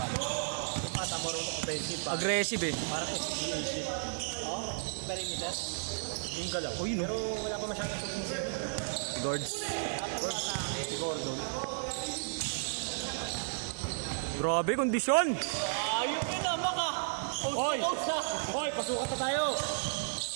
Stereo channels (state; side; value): silent; left; digital silence